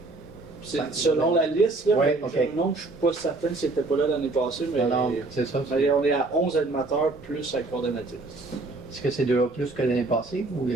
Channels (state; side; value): quieter; left; 3.2 dB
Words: C'est selon la liste, là, Ouais, mais ok. j'ai un nom, je suis pas certain si c'était pas là l'année passée, mais, Non, non, c'est ça. mais on est à 11 animateurs plus la coordonnatrice. Est-ce que c'est déjà plus que l'année passée? Ou...